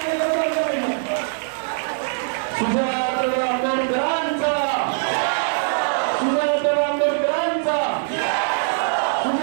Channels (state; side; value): silent; left; digital silence